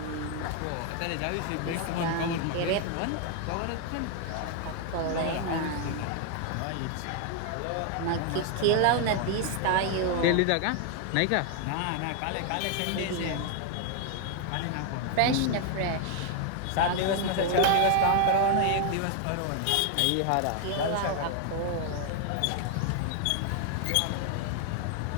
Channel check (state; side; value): different; both; correlation 0.00